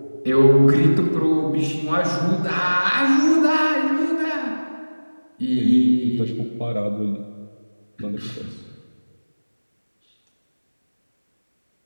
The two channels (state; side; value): inverted; both; correlation -1.00